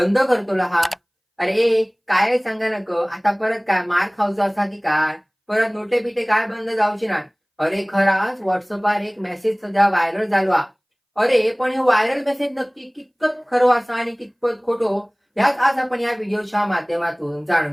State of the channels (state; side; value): identical; both; correlation 1.00